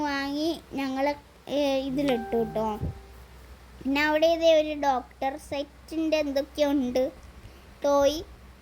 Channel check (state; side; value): identical; both; correlation 1.00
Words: വാങ്ങി ഞങ്ങൾ ഇതിലിട്ടു കേട്ടോ. പിന്നെ അവിടെ ഇതേ ഒരു ഡോക്ടർ സെറ്റിൻ്റെ എന്തൊക്കെയോ ഉണ്ട് ടോയ്,